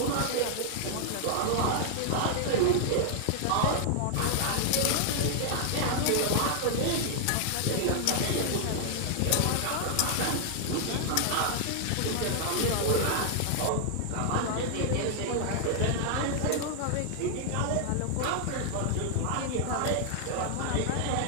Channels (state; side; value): different; both; correlation 0.00